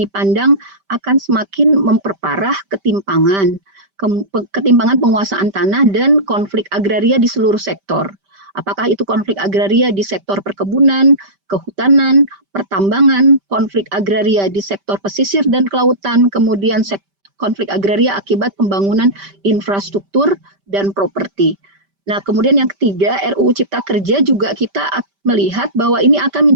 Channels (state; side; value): late; left; 5.1 ms